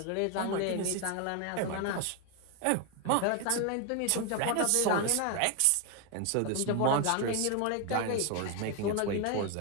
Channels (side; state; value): both; different; correlation 0.01